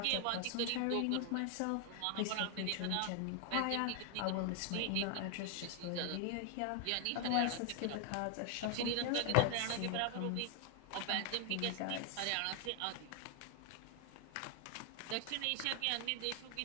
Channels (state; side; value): different; both; correlation 0.00